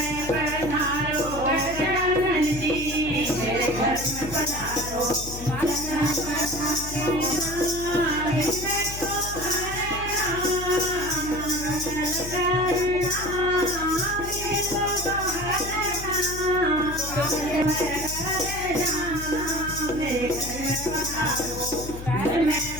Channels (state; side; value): noise; left; hum, 10 dB below the sound